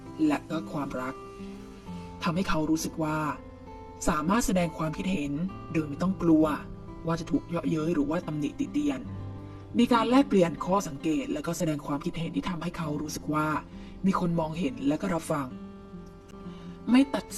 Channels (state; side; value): identical; both; correlation 1.00